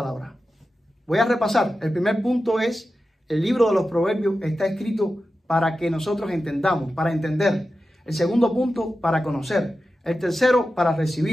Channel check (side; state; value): both; normal; correlation 0.92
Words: Voy a repasar. El primer punto es: el libro de los proverbios está escrito para que nosotros entendamos, para entender. El segundo punto, para conocer. El tercero, para